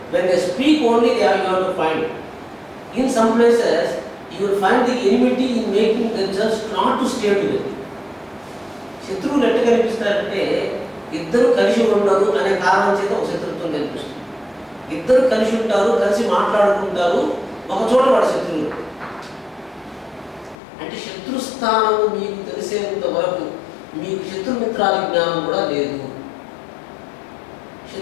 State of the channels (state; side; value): drops out; right; at 20.6 s